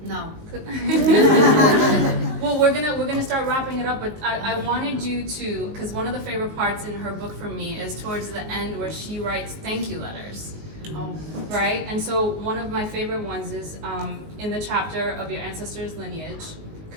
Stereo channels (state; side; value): late; left; 19 ms